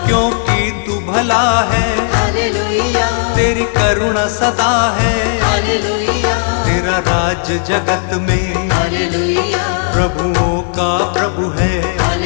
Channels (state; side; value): silent; right; digital silence